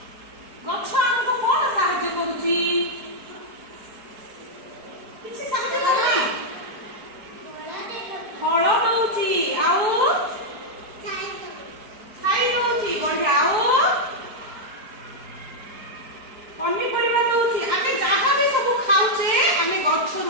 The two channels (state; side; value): late; left; 4.6 ms